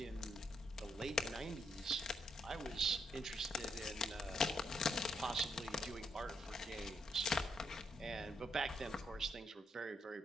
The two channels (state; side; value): normal; both; correlation 0.77